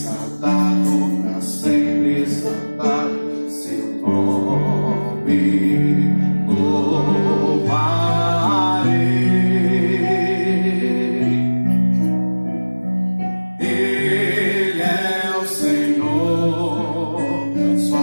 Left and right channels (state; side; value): inverted; both; correlation -1.00